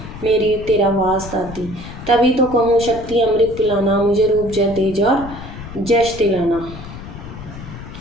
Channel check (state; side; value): noise; left; rumble, 13 dB below the sound